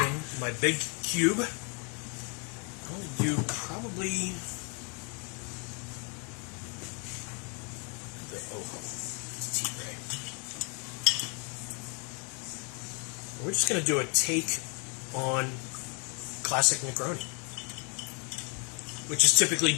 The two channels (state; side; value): quieter; right; 36.5 dB